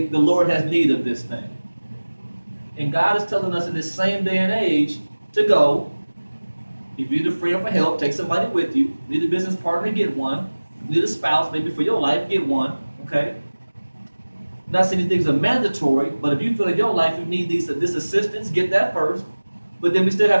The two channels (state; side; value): inverted; both; correlation -1.00